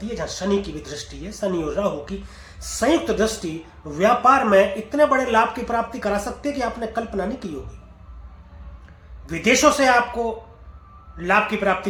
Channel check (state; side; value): identical; both; correlation 1.00